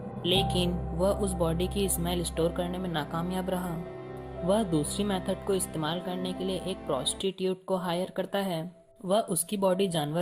लेकिन वह उस बॉडी की स्मेल स्टोर करने में नाकामयाब रहा। वह दूसरी मेथड को इस्तेमाल करने के लिए एक प्रोस्टिट्यूट को हायर करता है। वह उसकी बॉडी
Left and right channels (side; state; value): both; identical; correlation 1.00